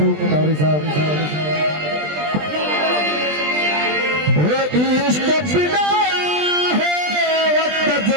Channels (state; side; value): late; left; 20 ms